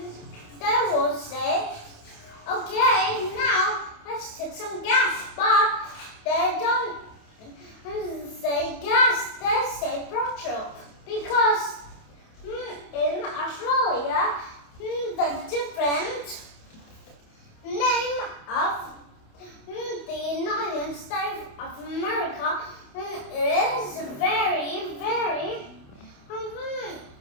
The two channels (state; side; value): late; right; 28 ms